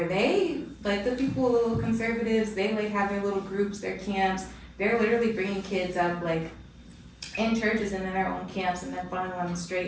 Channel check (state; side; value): identical; both; correlation 1.00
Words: they, like the people, the little conservatives, they like have their little groups, their camps, they're literally bringing kids up like in churches and in their own camps and then funneling them